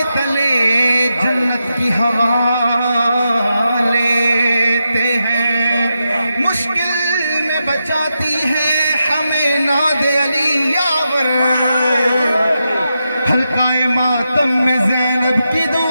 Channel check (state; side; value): inverted; both; correlation -0.87